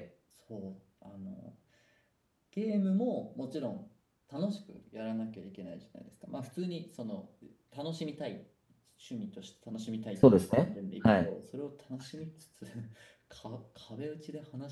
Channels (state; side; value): identical; both; correlation 1.00